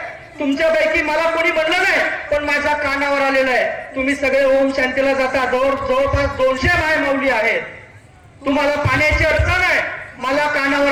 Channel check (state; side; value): identical; both; correlation 1.00